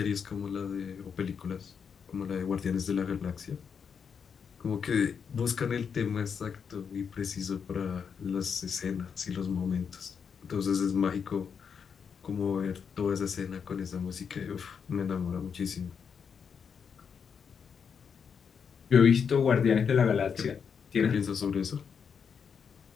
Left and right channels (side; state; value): right; quieter; 6.7 dB